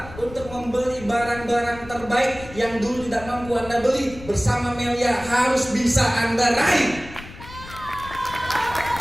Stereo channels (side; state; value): left; noise; rumble, 16 dB below the sound